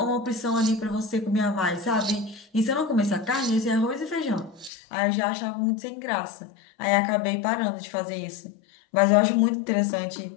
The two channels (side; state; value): right; drops out; at 4.7 s